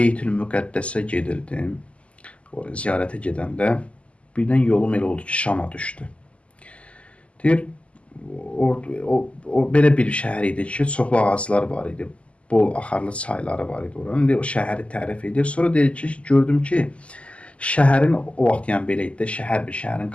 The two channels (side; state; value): right; late; 0.060 ms